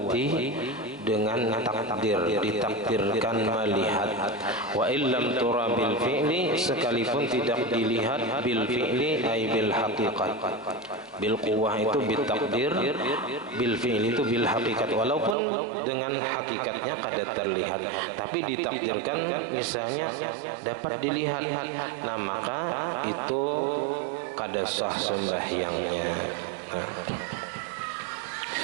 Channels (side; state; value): left; drops out; at 15.4 s